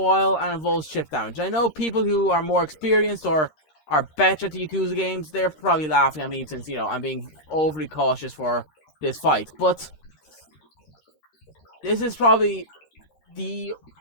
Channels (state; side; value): late; right; 13 ms